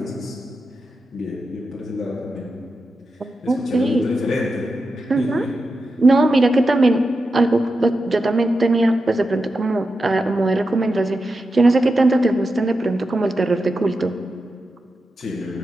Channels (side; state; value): both; normal; correlation 0.89